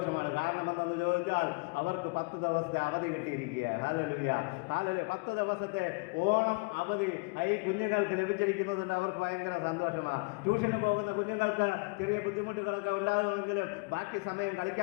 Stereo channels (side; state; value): right; quieter; 29.6 dB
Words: കാരണം എന്തെന്ന് ചോദിച്ചാൽ അവർക്ക് 10 ദിവസത്തെ അവധി കിട്ടിയിരിക്കുക. Hallelujah, hallelujah. 10 ദിവസത്തെ ഓണം അവധി ഈ കുഞ്ഞുങ്ങൾക്ക് ലഭിച്ചിരിക്കുന്നതുകൊണ്ട് അവർക്ക് ഭയങ്കര സന്തോഷമാണ്. ട്യൂഷന് പോകുന്ന കുഞ്ഞുങ്ങൾക്ക് ചെറിയ ബുദ്ധിമുട്ടുകളൊക്കെ ഉണ്ടാകുമെങ്കിലും ബാക്കി സമയം